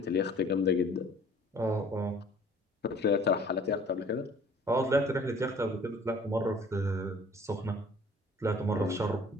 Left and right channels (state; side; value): normal; both; correlation 0.52